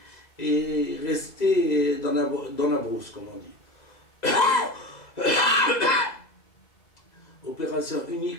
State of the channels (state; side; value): late; right; 2.0 ms